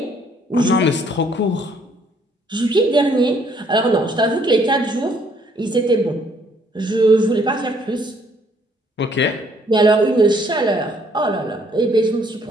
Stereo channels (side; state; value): both; normal; correlation 0.65